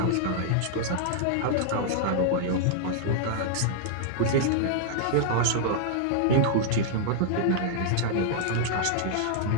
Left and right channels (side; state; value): both; different; correlation -0.01